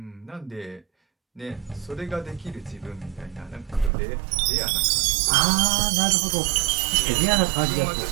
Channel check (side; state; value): left; drops out; at 3.9 s